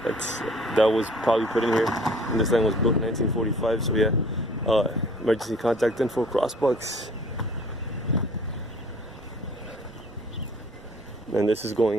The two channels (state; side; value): noise; right; rumble, 23 dB below the sound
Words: that was probably put in here. And this line was built in 1945. So yeah, emergency contact info, crossbucks. And this is